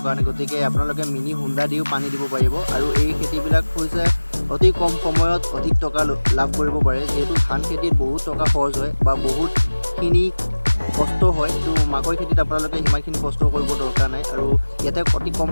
কাৰণে। গতিকে আপোনালোকে মিনি হোণ্ডা দিও পানী দিব পাৰিব আৰু এই খেতিবিলাক হৈছে অতি কম সময়ত অধিক টকা লাভ কৰিব পাৰে। যিহেতু ধান খেতিত বহুত টকা খৰচ হয় বা বহুতখিনি কষ্ট হয়, তো মাকৈ খেতিত আপোনালোকে সিমানখিনি কষ্ট কৰিব দৰকাৰ নাই আৰু ইয়াতে অতি কম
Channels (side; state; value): both; inverted; correlation -1.00